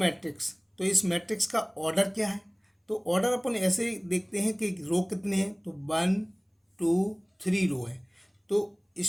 तो इस मैट्रिक्स का ऑर्डर क्या है। तो ऑर्डर अपन ऐसे देखते हैं कि रो कितने हैं, तो 1 2 3 रो है। तो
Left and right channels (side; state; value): both; identical; correlation 1.00